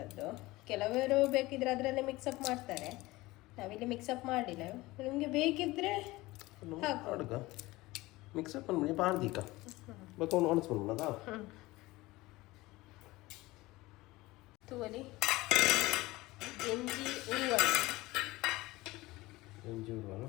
ಕೆಲವರು ಬೇಕಿದ್ರೆ ಅದರಲ್ಲೇ ಮಿಕ್ಸಪ್ ಮಾಡ್ತಾರೆ, ನಾವಿಲ್ಲಿ ಮಿಕ್ಸಪ್ ಮಾಡಿಲ್ಲ. ನಿಮಗೆ ಬೇಕಿದ್ರೆ ಹಾಕುವ ಮಿಕ್ಸಪ್ ಮಾಡಿ ಪಾಡ್ದೀಕ ಬೇಕು ಒಣಸ್ಕೊಂಡ ತೂವಲಿ ಎಂಜಿ ಉರುವಲ್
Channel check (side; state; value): right; quieter; 19.9 dB